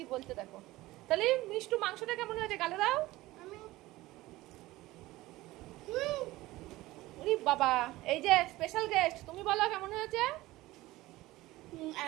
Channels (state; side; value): quieter; left; 18.2 dB